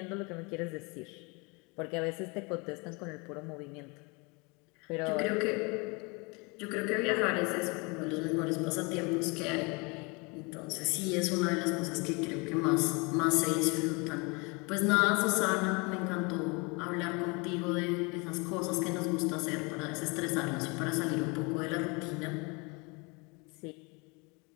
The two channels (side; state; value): right; quieter; 29.2 dB